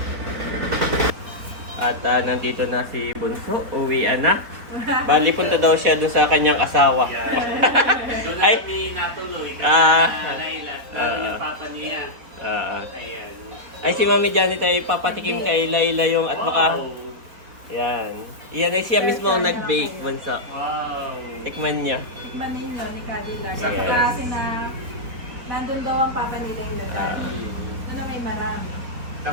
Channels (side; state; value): left; late; 4.2 ms